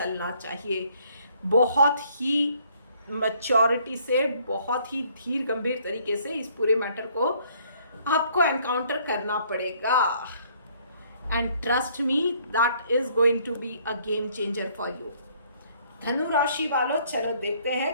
चाहिए। बहुत ही मैच्योरिटी से, बहुत ही धीर गंभीर तरीके से इस पूरे मैटर को आपको एनकाउंटर करना पड़ेगा। And trust me, that is going to be a game changer for you. धनु राशि वालों, चलो देखते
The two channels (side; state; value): both; inverted; correlation -0.63